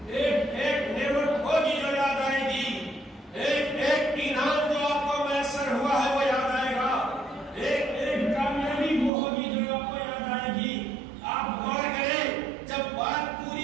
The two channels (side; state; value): left; drops out; at 9.1 s